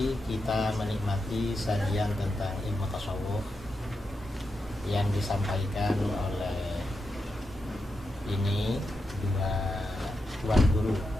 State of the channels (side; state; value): both; normal; correlation 0.87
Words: kita menikmati sajian tentang ilmu tasawuf yang disampaikan oleh ini dua tuan guru